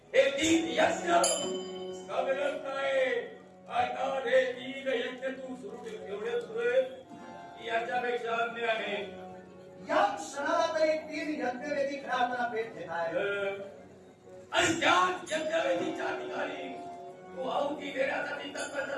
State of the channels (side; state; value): both; identical; correlation 1.00